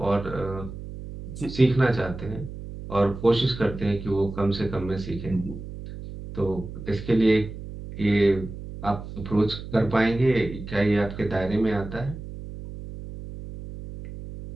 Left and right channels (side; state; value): right; noise; hum, 11 dB below the sound